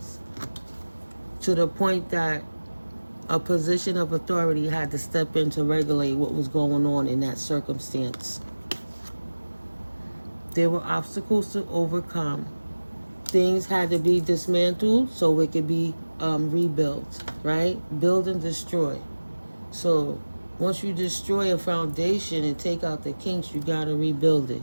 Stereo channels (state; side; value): inverted; both; correlation -1.00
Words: To the point that a position of authority had to step in to regulate what was going on in that circumstance. There were obstacles to overcome. Things had to be dismantled so it could be rebuilt, right? Build and destroy. So once you destroy a foundation and take out the kinks, you got to rebuild it.